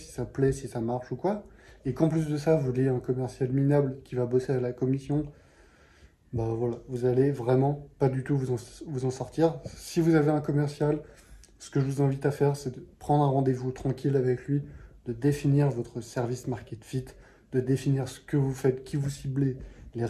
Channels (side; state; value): both; identical; correlation 1.00